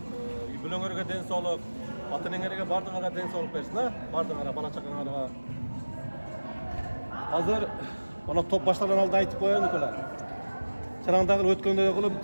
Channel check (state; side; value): inverted; both; correlation -1.00